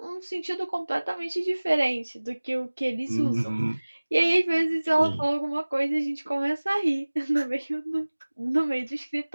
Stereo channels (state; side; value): inverted; both; correlation -1.00